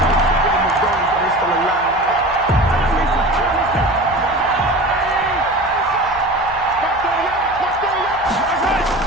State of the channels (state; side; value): noise; right; hum, 20 dB below the sound